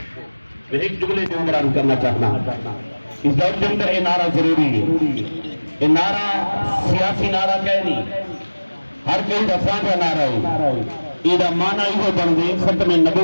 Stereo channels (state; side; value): inverted; both; correlation -1.00